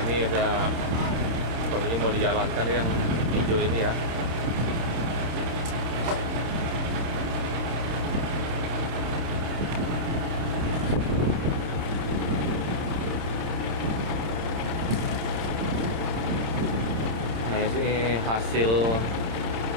Ini udah sepertinya mau dijalankan yang hijau ini ya. Nah ini hasil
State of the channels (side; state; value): left; late; 27 ms